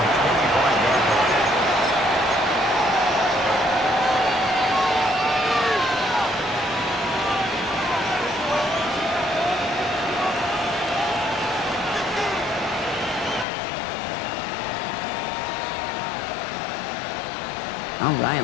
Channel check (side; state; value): right; drops out; at 13.5 s